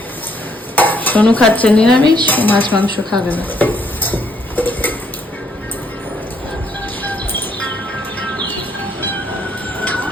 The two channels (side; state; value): both; normal; correlation 0.69